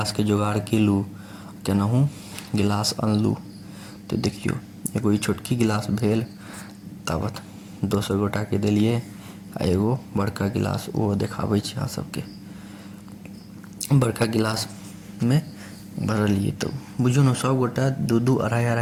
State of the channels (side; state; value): both; identical; correlation 1.00